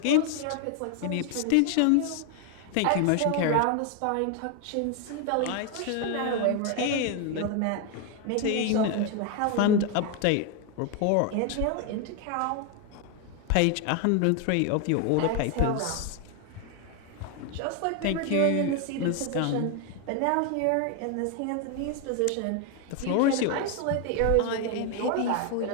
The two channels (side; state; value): both; different; correlation 0.01